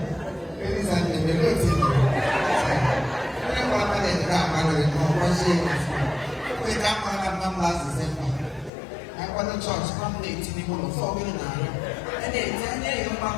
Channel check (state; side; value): drops out; right; at 8.7 s